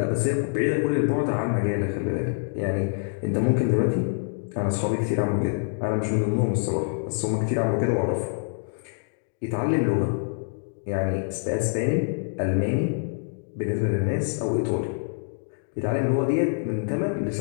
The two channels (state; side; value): silent; right; digital silence